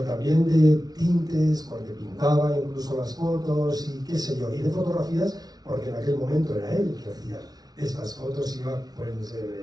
también de tintes, porque pintaba incluso las fotos y qué sé yo, y de fotografías, porque en aquel momento era él el que hacía estas fotos, iba pues,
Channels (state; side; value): late; left; 0.19 ms